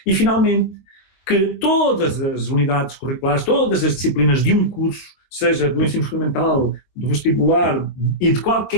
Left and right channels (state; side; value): late; right; 22 ms